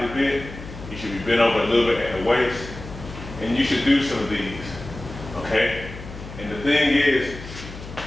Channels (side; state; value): left; noise; hum, 13 dB below the sound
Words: bent. You should be bent over a little bit at the waist, and you should do some of these, okay? And the thing is,